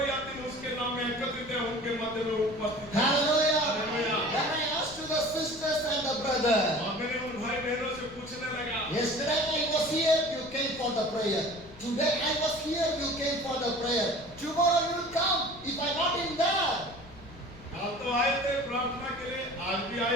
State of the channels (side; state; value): left; noise; rumble, 20 dB below the sound